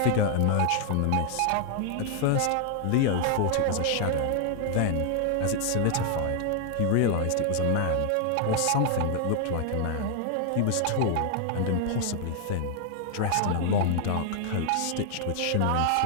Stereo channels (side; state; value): both; different; correlation 0.00